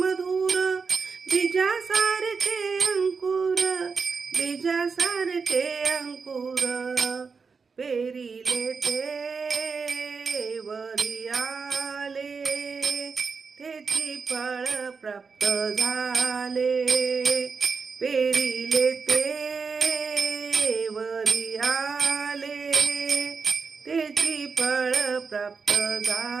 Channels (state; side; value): quieter; left; 5.1 dB